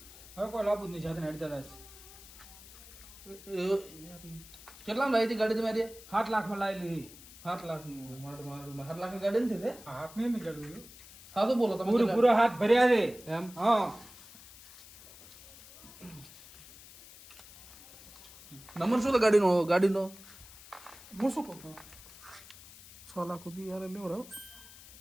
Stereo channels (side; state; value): left; noise; hiss, 19 dB below the sound